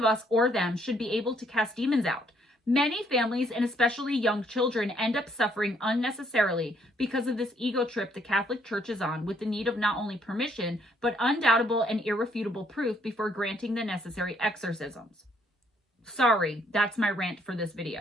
us or them should be able to cast demons out. Many families, and especially young children, end up suffering unnecessarily because of this ego trip the Catholic Church is on, with the need of not only permission, but undoubtable and irrefutable proof before granting the necessary exorcisms. Sorry, that's my rant for this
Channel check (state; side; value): normal; both; correlation 0.68